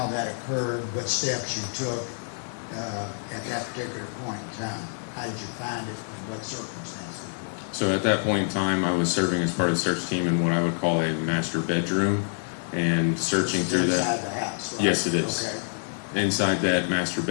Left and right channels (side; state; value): right; silent; 60 dB below the other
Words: that occurred, what steps you took at that particular point in time. How did you find it, and what circumstances were? So at that point in time, I was serving as part of the search team in what I would call a master bedroom, and searching through that. Inside the house, right? Yes, it is. Okay. Inside that master